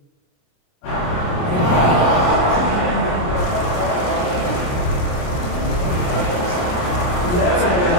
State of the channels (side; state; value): right; late; 28 ms